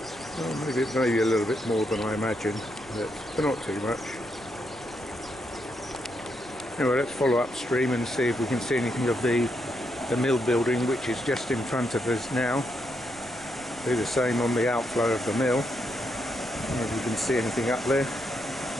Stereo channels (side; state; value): right; noise; rumble, 22 dB below the sound